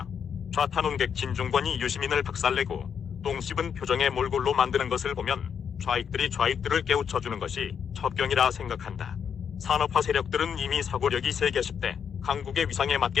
좌탄원객 진중권이 유시민을 박살내고 똥 씹은 표정의 몰골로 만드는 것을 보면 좌익들이 좌익들을 깨우쳐주는 것이 첩경이라 생각한다. 산업화 세력들은 이미 사고력이 세계 10대 강국의 위상에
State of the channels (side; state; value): right; quieter; 7.5 dB